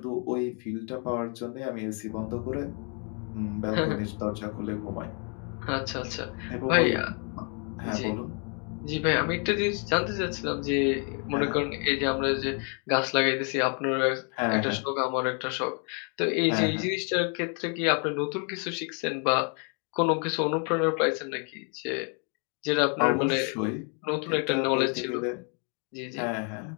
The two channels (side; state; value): right; quieter; 39.0 dB